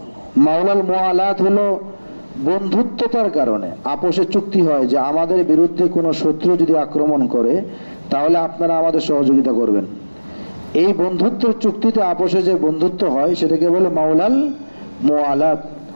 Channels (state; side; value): inverted; both; correlation -1.00